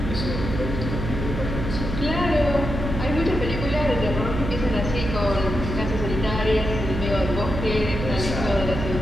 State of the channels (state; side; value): noise; right; hum, 4 dB below the sound